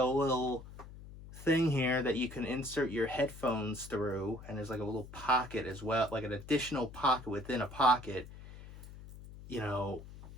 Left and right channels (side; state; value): left; noise; hum, 15 dB below the sound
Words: a little thing here that you can insert your headphones through, and there's like a little pocket as well, like an additional pocket within a pocket,